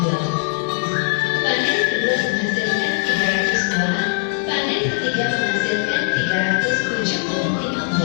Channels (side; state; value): right; silent; 57 dB below the other